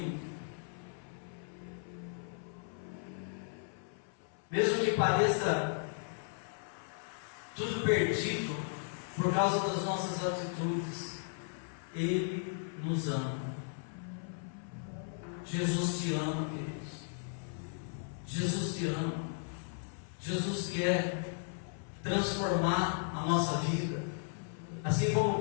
Mesmo que pareça tudo perdido por causa das nossas atitudes, Ele nos ama. Jesus te ama, queridos. Jesus te ama. Jesus quer transformar a nossa vida. Assim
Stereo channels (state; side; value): silent; right; 54 dB below the other